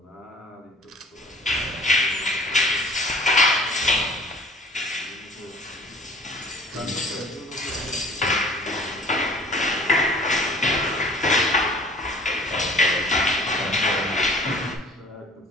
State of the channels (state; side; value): normal; both; correlation 0.49